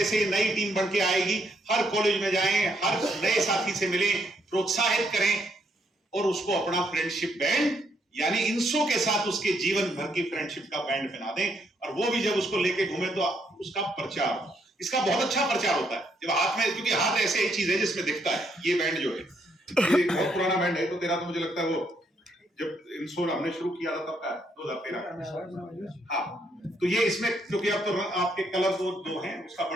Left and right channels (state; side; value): normal; both; correlation 0.74